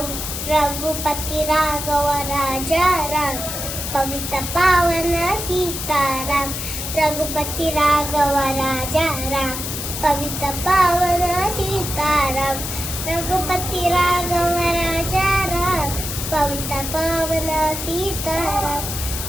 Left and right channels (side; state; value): left; noise; hiss, 5 dB below the sound